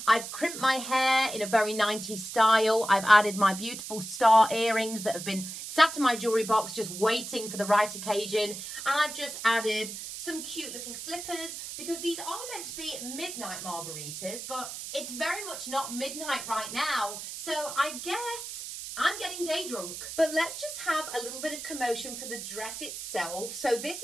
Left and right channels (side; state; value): right; noise; hiss, 8 dB below the sound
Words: I've crimped my hair in a very 90s style. I've added my beautiful star earrings that have been sat in my jewellery box just waiting for the right occasion. And I've just added some cute little slippers, because these are meant to be midnight margaritas, but it's very much not midnight right now, so I guess I'm getting day drunk. But let's just have a little bit of commotion for the dress itself. So